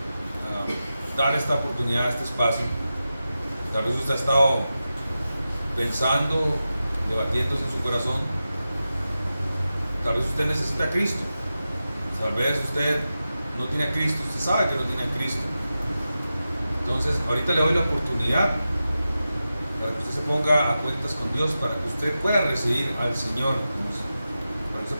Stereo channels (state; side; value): inverted; both; correlation -0.92